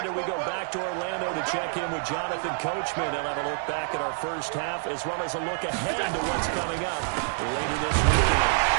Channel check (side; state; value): left; silent; digital silence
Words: we go back to Orlando to check in with Jonathan Coachman and have a look back at our first half as well as a look ahead to what's coming up later this weekend.